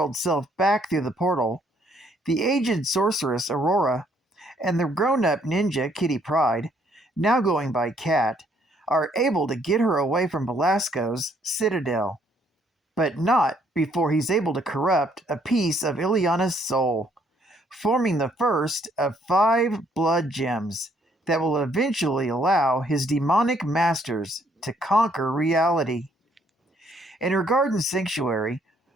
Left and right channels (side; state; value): both; normal; correlation 0.67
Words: self back through the portal, the aged sorceress Aurora and the grown-up ninja Kitty Pryde, now going by Cat, are able to get her away from Belasco's citadel. But not before he's able to corrupt a piece of Illyana's soul, forming the first of 5 blood gems that will eventually allow his demonic masters to conquer reality. In her garden sanctuary,